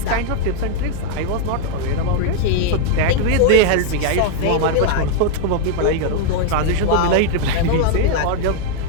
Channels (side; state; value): both; different; correlation 0.00